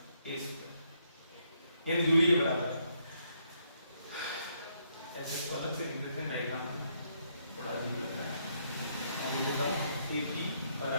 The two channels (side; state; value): both; inverted; correlation -0.74